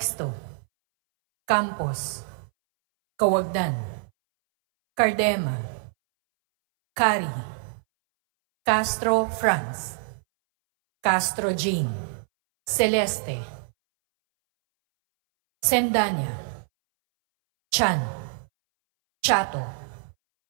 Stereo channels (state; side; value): silent; left; 62 dB below the other